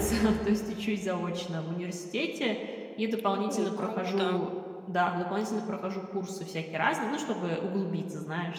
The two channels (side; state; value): both; identical; correlation 1.00